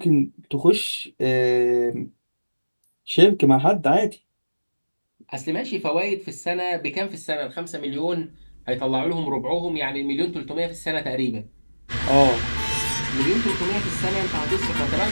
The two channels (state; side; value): inverted; both; correlation -1.00